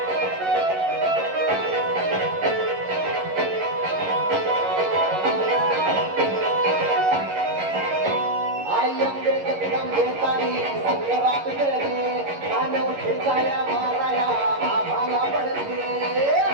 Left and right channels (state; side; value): late; left; 11 ms